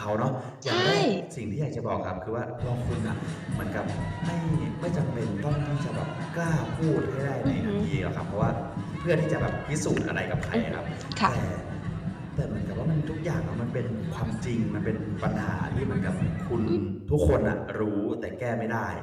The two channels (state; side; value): identical; both; correlation 1.00